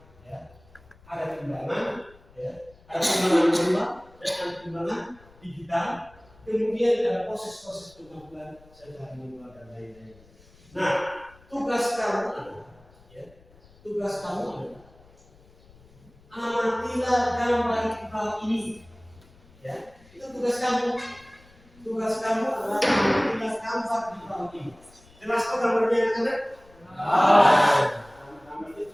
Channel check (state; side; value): noise; left; rumble, 27 dB below the sound